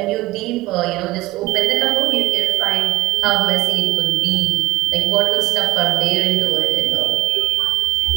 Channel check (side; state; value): left; quieter; 18.5 dB